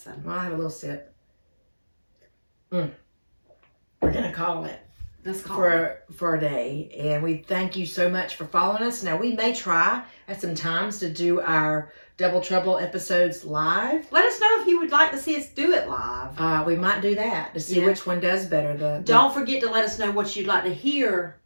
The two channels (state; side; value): inverted; both; correlation -1.00